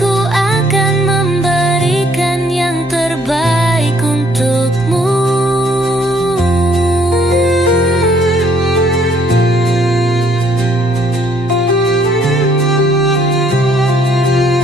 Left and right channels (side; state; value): both; normal; correlation 0.65